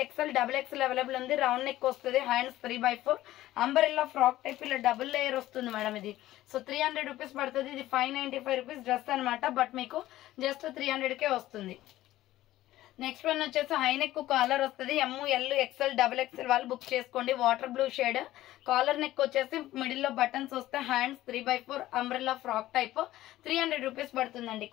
XL XXL available ఉంది. రౌండ్ నెక్ వస్తుంది. Hands 3/4 umbrella frock type. ఇలా డబుల్ లేయర్ వస్తుంది మేడం ఇది. సో 300 రూపీస్ పడుతుంది. ఇది 595 రూపీస్ డ్రెస్ అనమాట. బట్ మీకు జస్ట్ 300కే వస్తుంది. నెక్స్ట్ వన్ వచ్చేసి హైనెక్ కాలర్ వస్తుంది. ML XL XXL వాళ్ళు బుక్ చేసుకోండి. Water blue shade. Collar neck వచ్చేసి మిడిల్ లో బటన్స్ వస్తే. Hands 3/4 umbrella frock type. 300 rupees పడుతుందండి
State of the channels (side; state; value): right; quieter; 15.2 dB